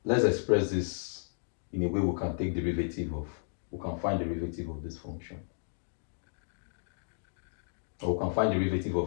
let's express this in a way we can find derivative of this function. Or we can find derivative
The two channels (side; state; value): right; silent; digital silence